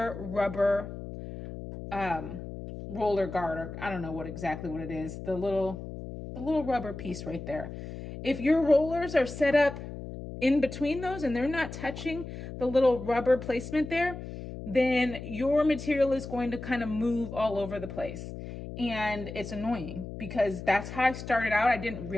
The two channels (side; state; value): left; noise; hum, 10 dB below the sound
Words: rubber roller guard, or I don't know exactly what it is, the little rubber piece right there. If your rollers are set up in between those and they're not touching the little rubber placement there, then your material is going to kind of move all over the place. And it's annoying because that's how I started out. I didn't